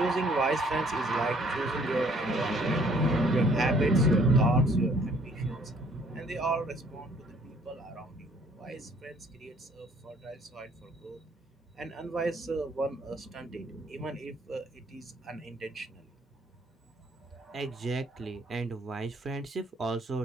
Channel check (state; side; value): normal; both; correlation 0.61